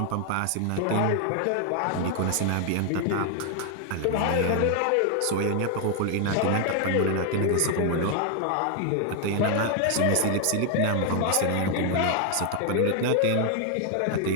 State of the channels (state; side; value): different; both; correlation 0.00